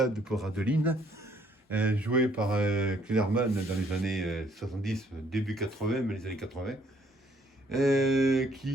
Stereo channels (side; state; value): both; normal; correlation 0.65